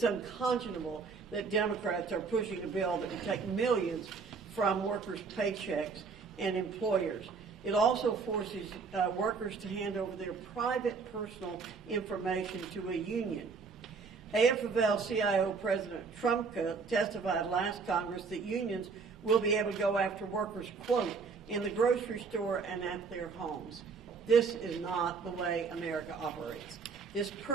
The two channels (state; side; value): quieter; left; 5.0 dB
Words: unconscionable that Democrats are pushing a bill that would take millions from workers' paychecks and employers. It also forces workers to hand over their private personal information to a union. AFL-CIO President Trumka testified last Congress that unions will be able to go after workers, quote, in the grocery store and at their homes. This is not the way America operates. This